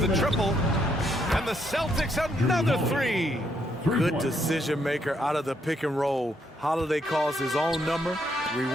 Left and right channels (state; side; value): normal; both; correlation 0.74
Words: triple. And the Celtics another 3. Good decision maker out of the pick and roll. Holiday calls his own number,